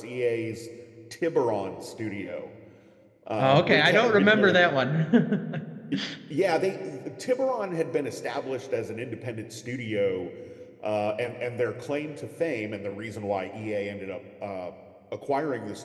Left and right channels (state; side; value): identical; both; correlation 1.00